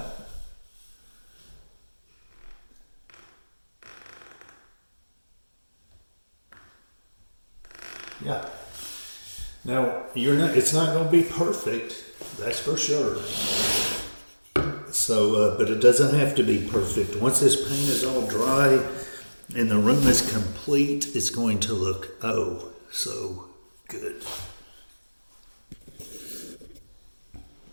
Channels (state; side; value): inverted; both; correlation -1.00